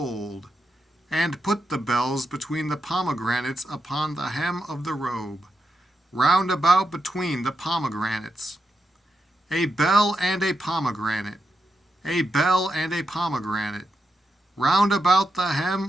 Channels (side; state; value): both; normal; correlation 0.86